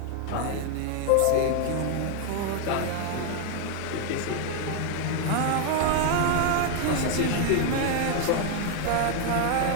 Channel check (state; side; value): different; both; correlation 0.00